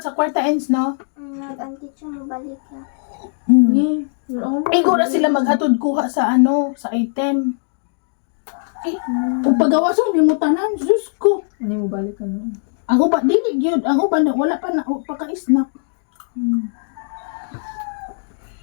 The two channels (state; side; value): silent; right; digital silence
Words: sa kwarta ends no. Nag-anteacher mo balik ka. Igo na sila maghatod kuha sa sa item. Kung pagawa sa limutanan, Diyos ko. Hindi mo balik ka na. Ang uban, dili gyud. Ang uban, wala pa na, paka-snack.